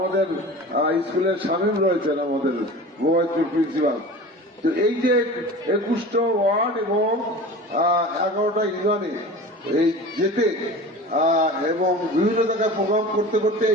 স্কুলের শামীম রয়েছেন, আমাদের গোয়াইতুর প্রিন্সিপাল। তো এই যে 21টা ওয়ার্ড এবং 11টা ইউনিয়নে এই যেতে এবং বিভিন্ন জায়গায় প্রোগ্রাম করতে করতে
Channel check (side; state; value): both; normal; correlation 0.36